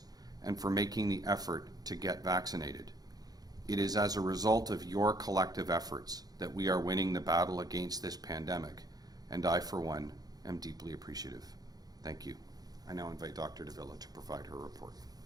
and for making the effort to get vaccinated. It is as a result of your collective efforts that we are winning the battle against this pandemic, and I, for one, am deeply appreciative. Thank you. I now invite Dr. Davila to provide her report.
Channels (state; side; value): late; left; 0.19 ms